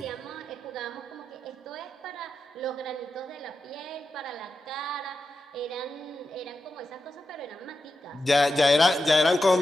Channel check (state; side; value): normal; both; correlation 0.89